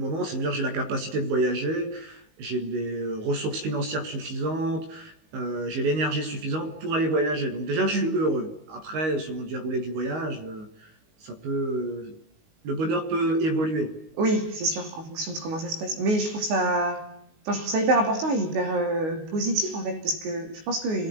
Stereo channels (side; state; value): left; late; 19 ms